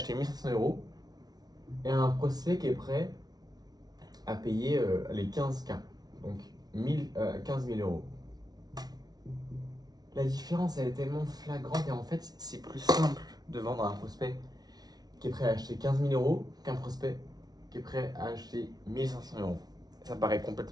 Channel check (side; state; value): left; late; 0.19 ms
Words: 1500 € et un prospect qui est prêt à payer les 15K. Donc 15 000 euros. La différence, elle est tellement flagrante et en fait, c'est plus simple de vendre à un prospect qui est prêt à acheter 15 000 euros qu'un prospect qui est prêt à acheter 1500 euros. Ça paraît